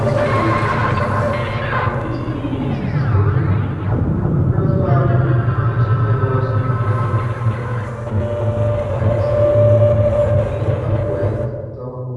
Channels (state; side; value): identical; both; correlation 1.00